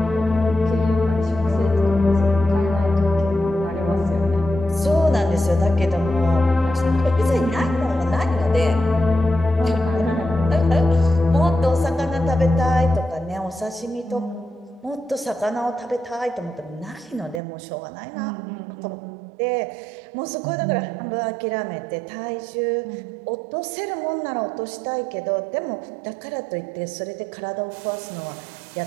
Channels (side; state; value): left; drops out; at 17.4 s